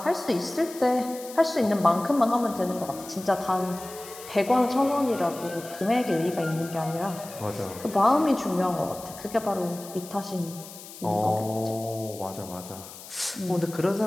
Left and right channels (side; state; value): left; noise; hiss, 15 dB below the sound